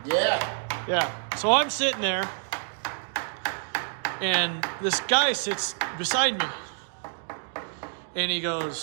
Yeah. Yeah. So I'm sitting there, and this guy sits beside me. And he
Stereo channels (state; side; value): silent; left; digital silence